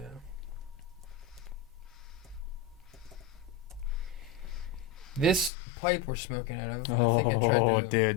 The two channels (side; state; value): right; drops out; at 5.5 s